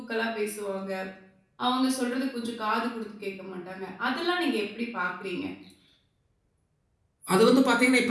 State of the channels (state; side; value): identical; both; correlation 1.00